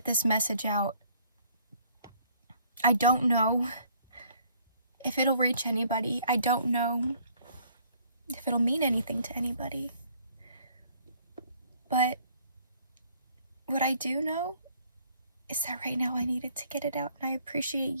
this message out. I don't know if it'll reach anybody. I don't know if it'll mean anything to anybody. But what I do know is that right now I needed to get it out, and I appreciate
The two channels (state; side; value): inverted; both; correlation -0.61